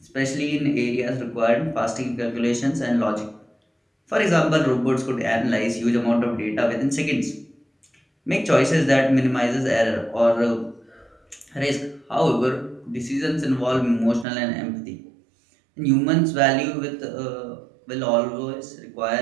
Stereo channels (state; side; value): drops out; left; at 14.2 s